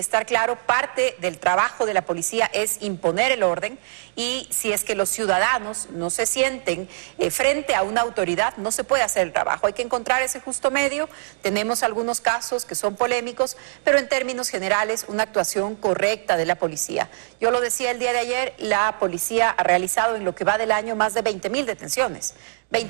claro. Parte del trabajo de la policía es imponer el orden y si es que los ciudadanos no se sienten frente a una autoridad, no se puede hacer el trabajo. Hay que encontrar ese justo medio. Tenemos algunos casos que son polémicos, pero en términos generales, una actuación correcta de la policía. Yo lo decía el día de ayer, la policía ha realizado en lo que va del año más de 20.000 detenciones.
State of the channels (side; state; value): left; silent; digital silence